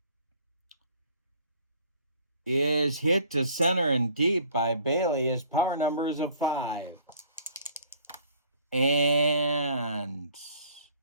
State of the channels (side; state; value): both; inverted; correlation -0.55